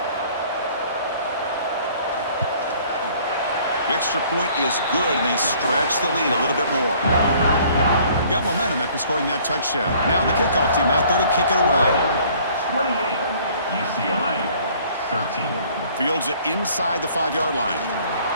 The extra point is good, and they stretch the lead a little bit more. Got momentum after scoring that touchdown. Now the kickoff team out there to kick it away. 28, UCLA, 13. Fields it inside the 5-yard line.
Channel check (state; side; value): inverted; both; correlation -0.56